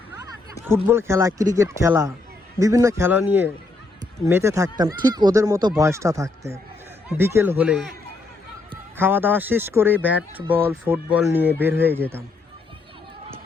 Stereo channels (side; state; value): right; quieter; 3.3 dB